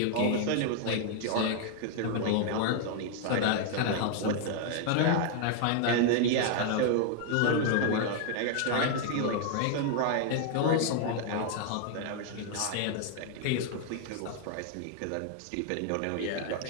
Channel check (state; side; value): different; both; correlation 0.00